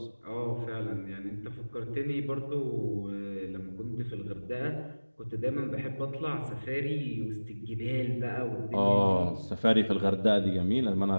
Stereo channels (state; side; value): inverted; both; correlation -1.00